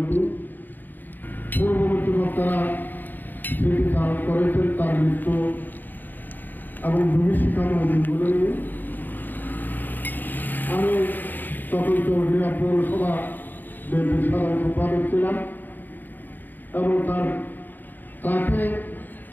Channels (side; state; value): right; late; 0.089 ms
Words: পূর্ববর্তী বক্তারা স্মৃতিচারণ করেছেন তার মৃত্যু এবং ভূমিশিক্ষাময় দিনগুলো নিয়ে। আমি তখন চৌধুরী পৌরসভা বিএনপির সাধারণ সম্পাদক ছিলাম এবং তাকে